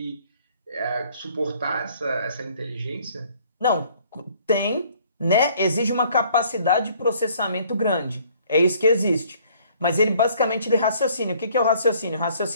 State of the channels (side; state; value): both; inverted; correlation -0.60